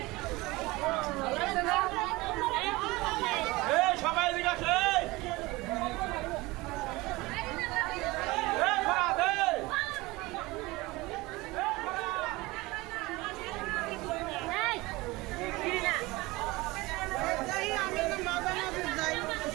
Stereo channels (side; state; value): left; quieter; 21.6 dB